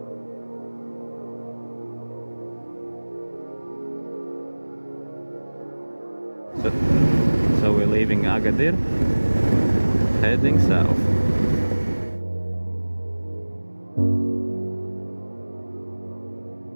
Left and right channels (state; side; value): inverted; both; correlation -1.00